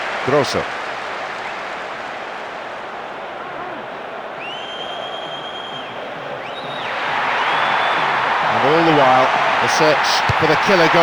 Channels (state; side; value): identical; both; correlation 1.00